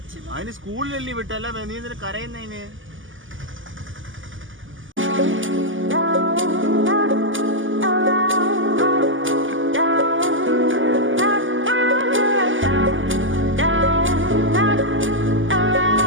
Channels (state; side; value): late; left; 0.57 ms